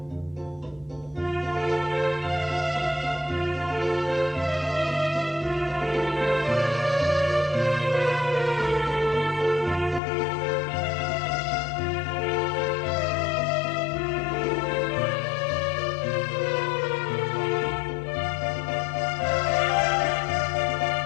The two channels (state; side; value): drops out; right; at 10.0 s